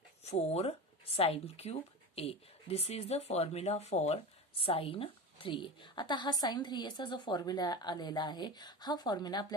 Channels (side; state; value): both; normal; correlation 0.27